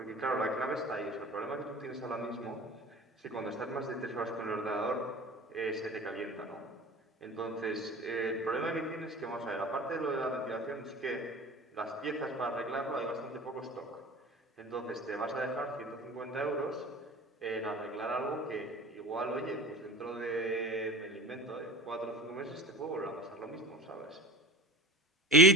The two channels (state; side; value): normal; both; correlation 0.36